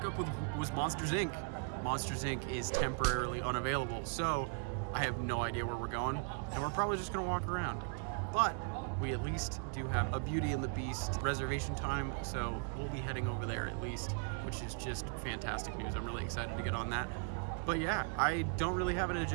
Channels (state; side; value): quieter; left; 35.0 dB